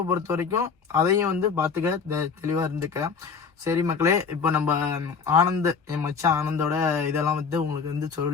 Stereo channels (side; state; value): right; quieter; 5.6 dB